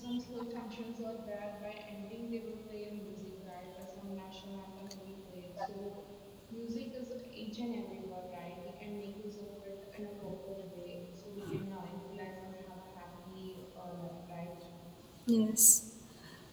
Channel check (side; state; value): both; identical; correlation 1.00